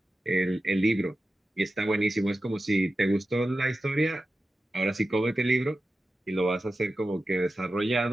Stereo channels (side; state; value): both; normal; correlation 0.93